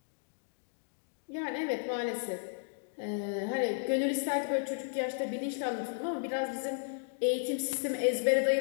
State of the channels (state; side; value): silent; right; digital silence